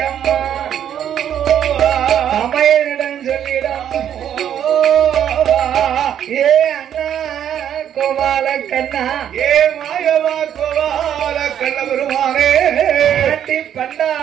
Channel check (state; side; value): quieter; left; 9.8 dB